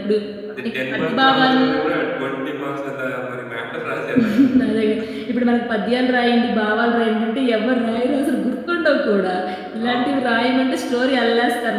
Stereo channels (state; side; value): identical; both; correlation 1.00